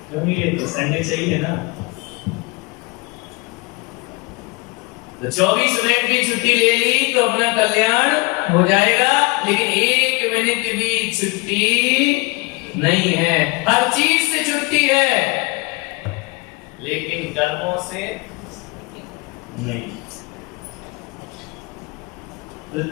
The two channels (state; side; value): quieter; right; 26.8 dB